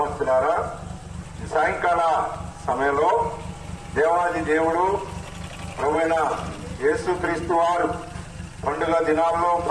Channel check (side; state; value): both; identical; correlation 1.00